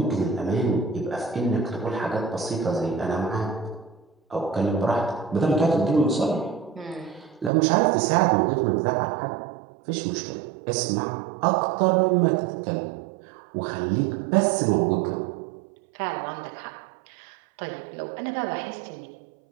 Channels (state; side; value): drops out; left; at 7.5 s